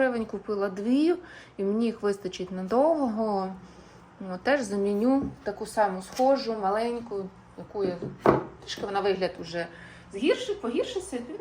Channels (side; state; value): both; identical; correlation 1.00